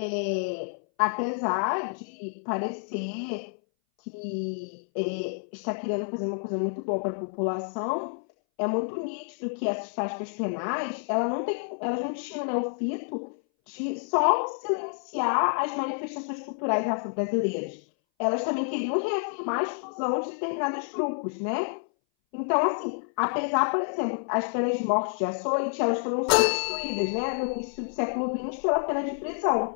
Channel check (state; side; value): silent; right; 59 dB below the other